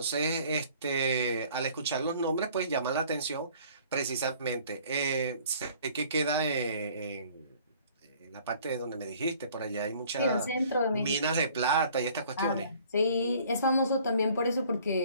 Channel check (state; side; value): inverted; both; correlation -0.55